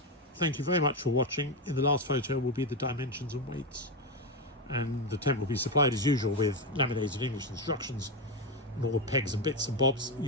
Thank you very much for watching. In the last photo will be the dimensions and weights, and the tent will be supplied as usual with laminated English instructions and all the pegs and bits and bobs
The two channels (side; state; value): both; normal; correlation 0.10